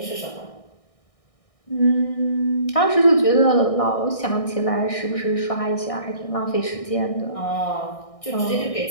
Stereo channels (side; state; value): right; late; 1.6 ms